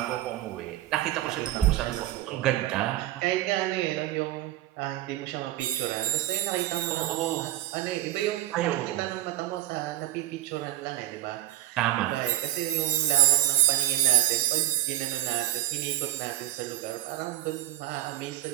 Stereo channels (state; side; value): quieter; left; 14.2 dB